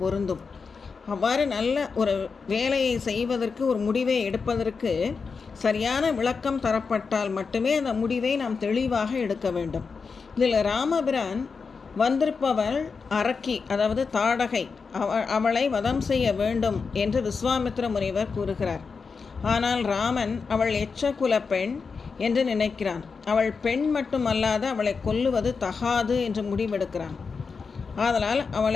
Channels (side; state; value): right; quieter; 5.1 dB